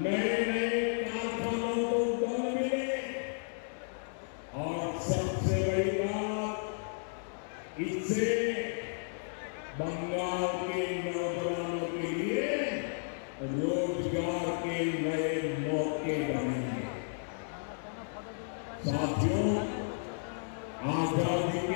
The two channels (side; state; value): right; silent; digital silence